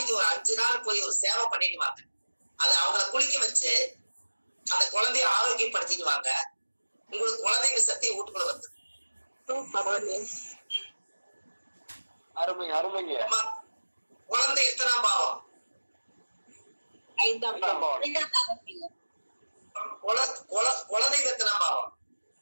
ஒரு 5 நாள் போய் ஒரு சேவை பண்ணிட்டு வாங்க. அது அவங்கள குளிக்க வச்சு அந்த குழந்தைய ஆரோக்கியப்படுத்திடுவாங்க. உங்களுக்கு குழந்தைங்க சக்தி வீட்டுக்குள்ள வந்து அருமை அருமைங்க. குழந்தை எத்தனாம் பாவம்? 5ஆம் பாவம். குழந்தை எத்தனாம் பாவம்?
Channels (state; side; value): inverted; both; correlation -1.00